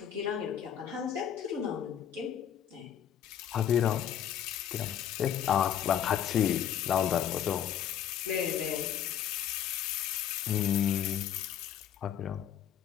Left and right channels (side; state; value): right; quieter; 9.6 dB